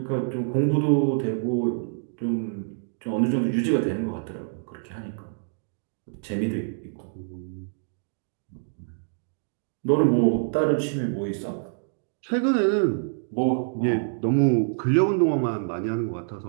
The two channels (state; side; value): silent; left; digital silence